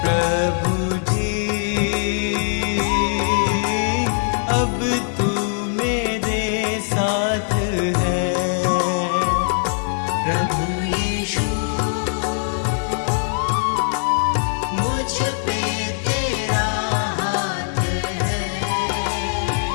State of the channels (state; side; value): silent; right; 65 dB below the other